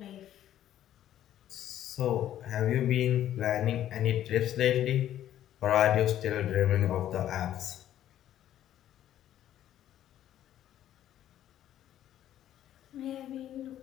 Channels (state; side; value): quieter; right; 11.8 dB